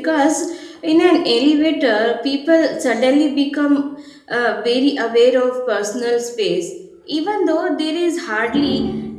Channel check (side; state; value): both; identical; correlation 1.00